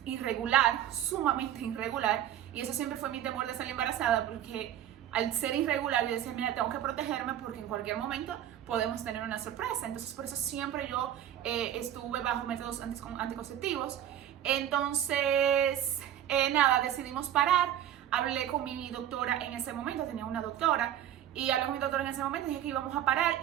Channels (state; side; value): quieter; left; 11.2 dB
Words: irregular, sumamente irregular, y eso siempre fue mi temor de salir embarazada, porque al ser irregular yo decía, mira, tengo que protegerme porque en cualquier momento podemos tener una sorpresa. Entonces por eso siempre yo estuve bajo métodos anticonceptivos. Entonces, nada, decidimos parar. Hablé con mi doctora en ese momento, tenía una doctora, y hablé con mi doctora en ese momento, dije que íbamos a parar,